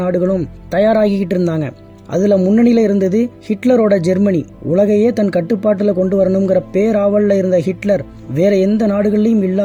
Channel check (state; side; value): identical; both; correlation 1.00